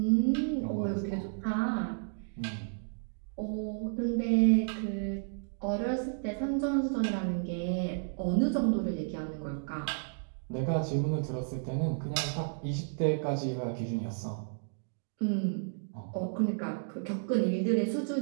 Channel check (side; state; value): left; silent; digital silence